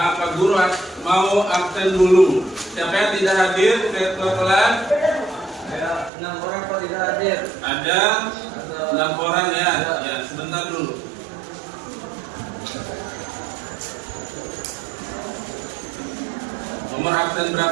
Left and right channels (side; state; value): left; drops out; at 6.1 s